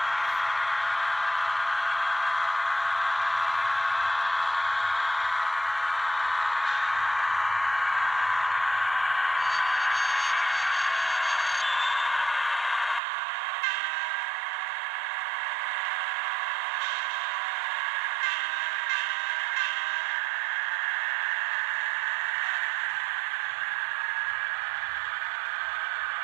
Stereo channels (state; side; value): drops out; left; at 13.0 s